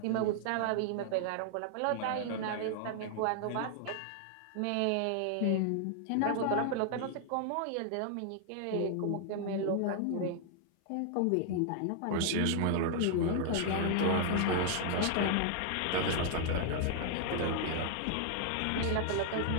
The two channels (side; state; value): both; different; correlation 0.00